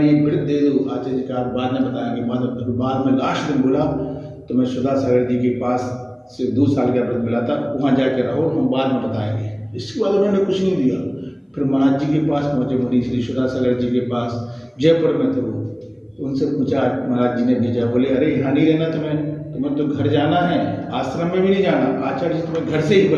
लिए व्रत दे दो। आचार्य जी का बाद में बताएंगे। बाद में लास्ट दिन बोला तो मैं सुधा सागर जी के पास से 2 साल का व्रत मिला था, वहाँ जाकर रहो, हम बाद में बताएंगे। इसके बाद उन्होंने कुछ नहीं दिया। फिर महाराज जी के पास पहुँचे, मुनि श्री सुधा सागर जी के पास, जयपुर में थे वो। तो उनसे पूछा, महाराज जी ने भेजा, बोले अरे यहाँ नहीं रहना तुम्हें तो घर जाना है, आश्रम में भी नहीं जाना। आचार्य जी तुम्हें घर से ही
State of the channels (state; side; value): identical; both; correlation 1.00